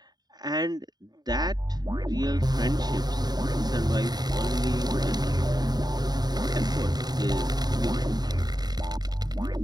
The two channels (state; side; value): late; left; 0.20 ms